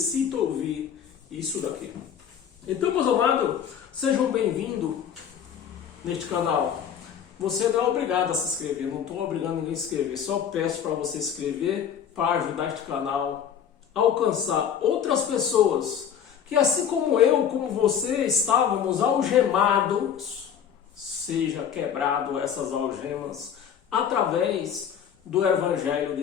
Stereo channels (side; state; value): right; quieter; 8.4 dB